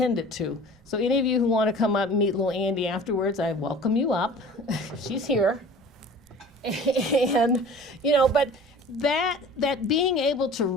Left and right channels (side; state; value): both; normal; correlation 0.43